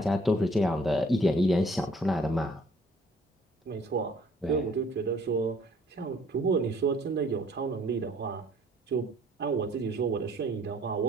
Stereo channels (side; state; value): both; normal; correlation 0.58